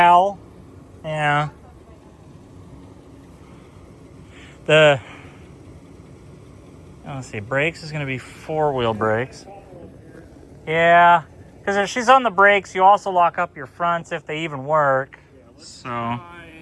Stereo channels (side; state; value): both; identical; correlation 1.00